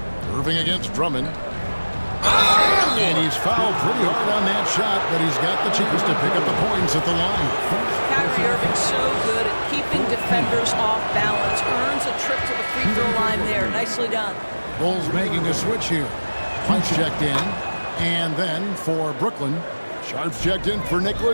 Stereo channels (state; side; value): inverted; both; correlation -1.00